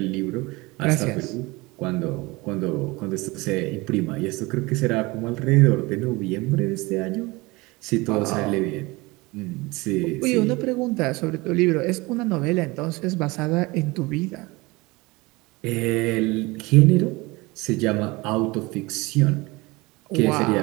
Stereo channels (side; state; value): left; quieter; 23.2 dB